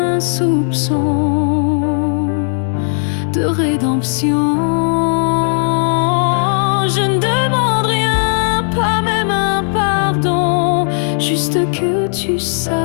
soupçon de rédemption. Je ne demande rien, pas même un pardon, juste que tu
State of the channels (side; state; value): right; silent; 63 dB below the other